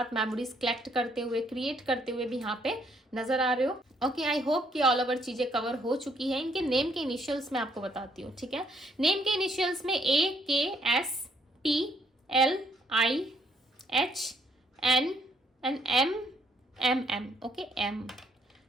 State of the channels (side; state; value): both; normal; correlation 0.69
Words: मेमोरीज कलेक्ट करते हुए, क्रिएट करते हुए भी यहाँ पे नजर आ रहे हो, ओके। आई होप कि ऑल ओवर चीज़ें कवर हो चुकी है। इनके नेम के इनिशियल्स मैं आपको बताती हूँ, ठीक है। नेम के इनिशियल्स में AKSTLIHN and MM, okay,